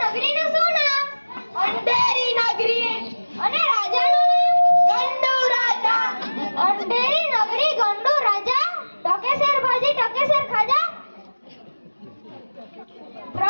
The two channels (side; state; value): both; inverted; correlation -1.00